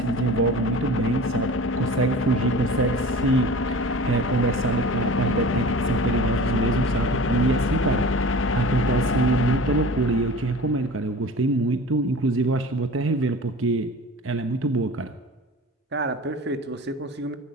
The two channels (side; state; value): both; normal; correlation 0.39